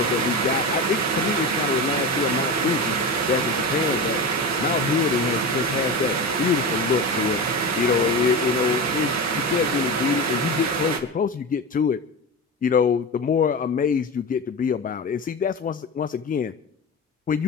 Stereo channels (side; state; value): both; normal; correlation 0.24